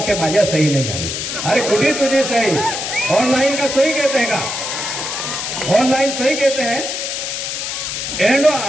माझ्या सही नाही झाली अरे कुठे तुझी सही ऑनलाइन का सही कहते हैं का ऑनलाइन सही कहते हैं एंडो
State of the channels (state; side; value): noise; left; hiss, 4 dB below the sound